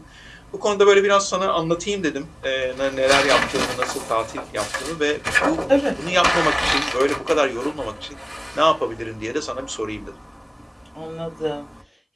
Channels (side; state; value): both; identical; correlation 1.00